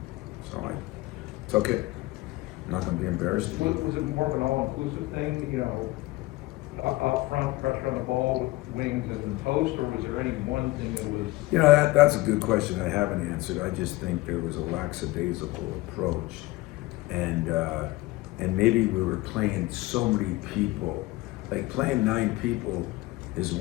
It's okay. I'm not going to be embarrassed. Was it more of an all-inclusive thing, up front, pressure on the ball, wings and post, or was there any one thing that was? That's a good question I haven't answered. I just think there was a lackadaisical approach. And maybe we were playing so many people. Like playing 9 people is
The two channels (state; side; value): quieter; right; 19.7 dB